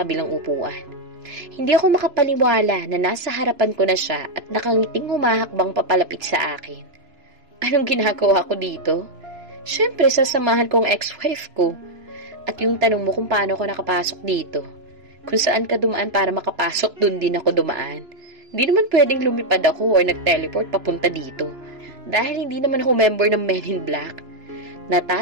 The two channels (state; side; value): late; left; 3.0 ms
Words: upuan. Hindi ako makapaniwala na nasa harapan ko na siya at nakangiting humahakbang papalapit sa akin. Anong ginagawa ko dito? Siyempre, sasamahan kong ex-wife ko. At yung tanong mo kung paano ako nakapasok dito, kung saan ka dumaan para makapasok, dun din ako dumaan. Hindi naman pwedeng lumipad ako or nag-teleport papunta dito. Dahil hindi naman ako member ng Men in Black.